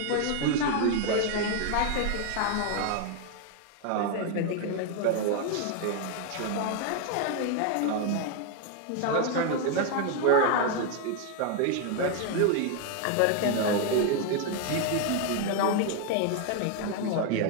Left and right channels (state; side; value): different; both; correlation 0.01